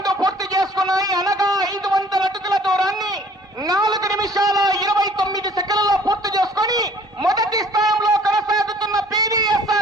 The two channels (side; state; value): both; normal; correlation 0.54